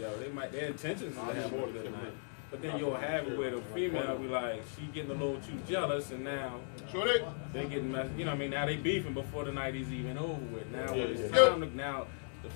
their intentions is to have a good night. But then you'll have it where the female be like, she getting a little too jealous, and now Sure they? they getting messed, now they beefing before the night is even over with. Now when it's Yeah. time to, now the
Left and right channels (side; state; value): right; silent; digital silence